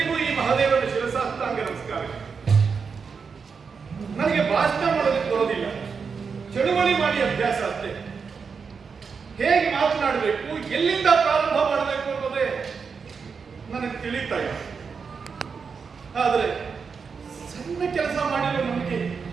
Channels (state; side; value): quieter; left; 5.6 dB